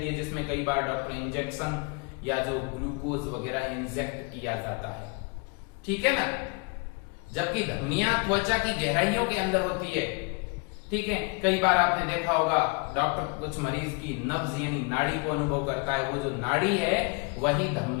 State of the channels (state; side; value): quieter; right; 31.3 dB